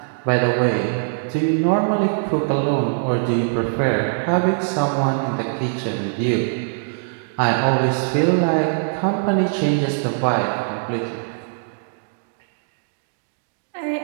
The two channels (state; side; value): silent; left; digital silence